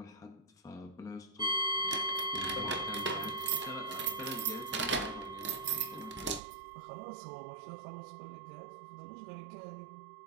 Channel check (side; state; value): left; drops out; at 6.4 s